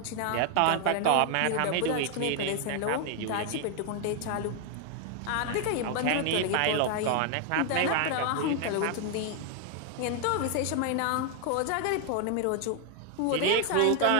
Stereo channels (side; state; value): both; different; correlation 0.00